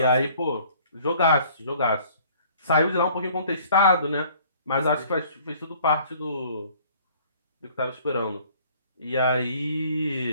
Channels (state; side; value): inverted; both; correlation -0.55